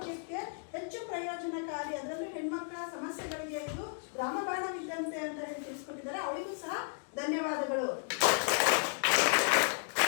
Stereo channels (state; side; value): silent; right; digital silence